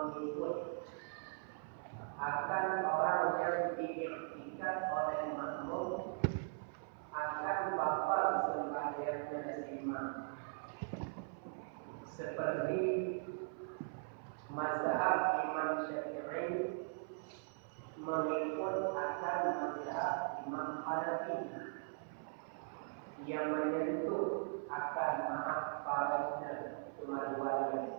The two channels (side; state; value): left; silent; 51 dB below the other